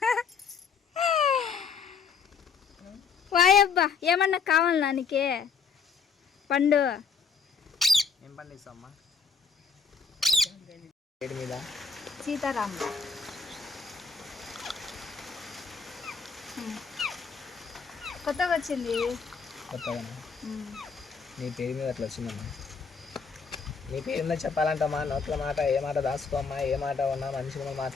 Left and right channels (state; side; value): quieter; right; 5.6 dB